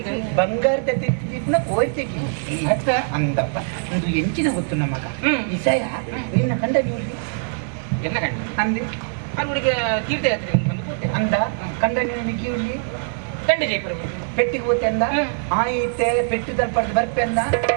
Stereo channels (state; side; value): silent; left; 62 dB below the other